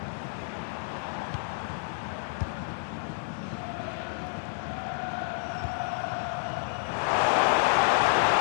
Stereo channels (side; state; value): right; silent; digital silence